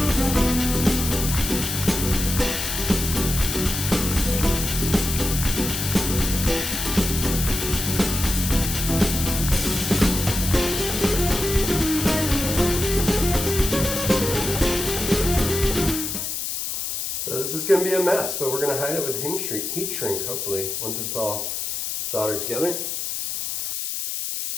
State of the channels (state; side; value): noise; left; hiss, 3 dB below the sound